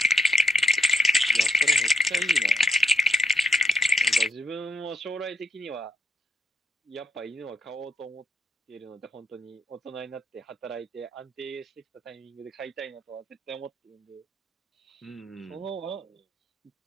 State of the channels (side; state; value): both; normal; correlation 0.72